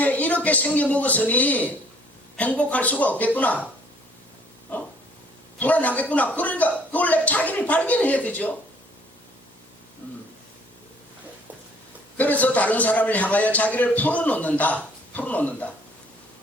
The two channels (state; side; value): normal; both; correlation 0.59